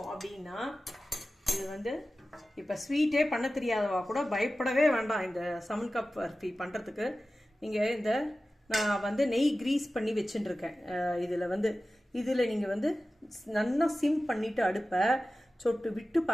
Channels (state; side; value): normal; both; correlation 0.95